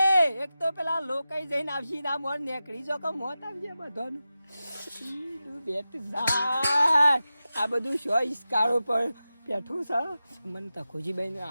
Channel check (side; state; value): both; inverted; correlation -0.93